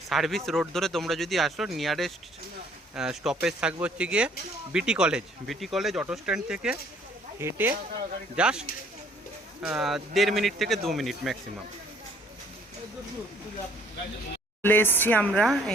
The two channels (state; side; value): normal; both; correlation 0.60